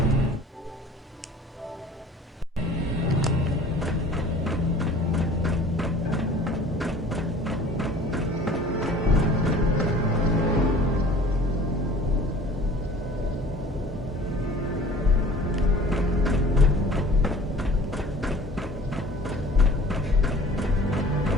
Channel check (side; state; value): both; normal; correlation 0.47